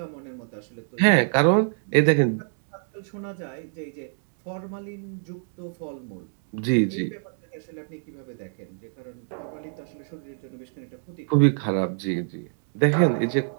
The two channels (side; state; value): left; silent; digital silence